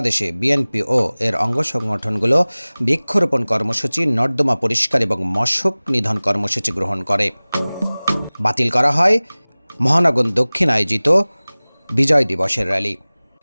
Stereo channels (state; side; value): inverted; both; correlation -0.99